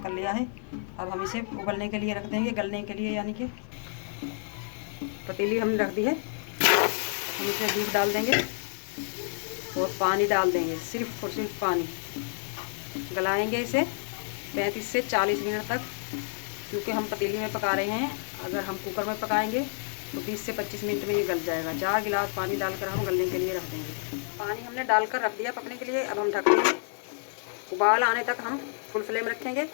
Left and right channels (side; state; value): right; silent; 58 dB below the other